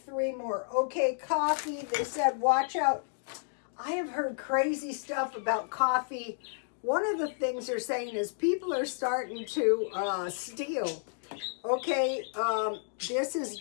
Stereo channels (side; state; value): right; silent; digital silence